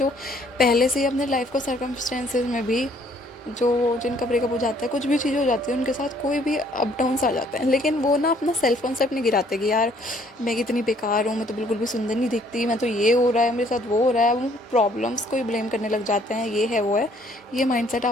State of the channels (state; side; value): normal; both; correlation 0.62